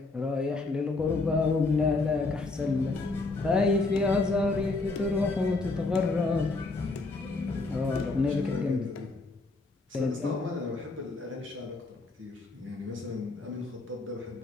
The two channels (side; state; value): right; quieter; 3.5 dB